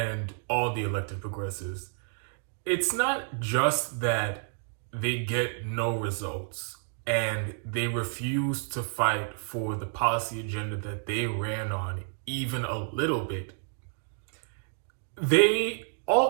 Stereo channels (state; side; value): silent; left; 58 dB below the other